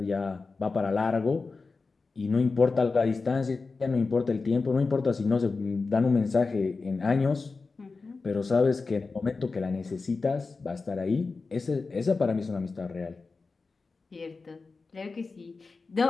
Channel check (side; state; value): right; quieter; 4.1 dB